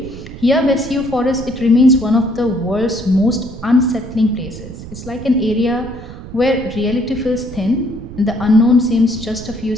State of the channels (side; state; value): right; noise; rumble, 13 dB below the sound